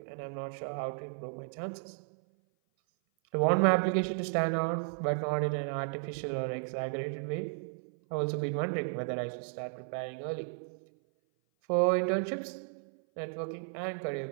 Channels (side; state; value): left; silent; 55 dB below the other